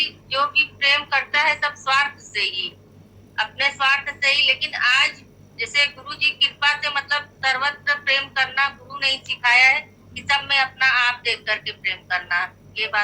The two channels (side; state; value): both; identical; correlation 1.00